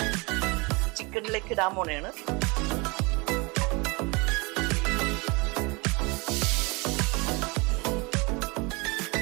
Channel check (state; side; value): quieter; left; 27.4 dB